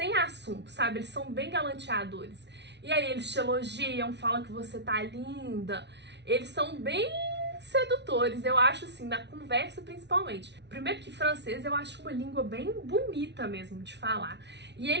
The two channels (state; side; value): late; left; 0.50 ms